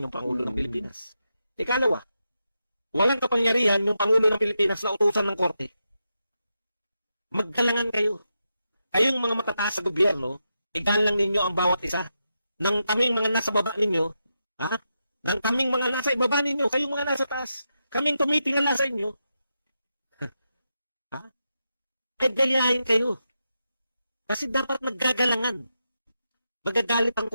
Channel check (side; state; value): both; inverted; correlation -0.86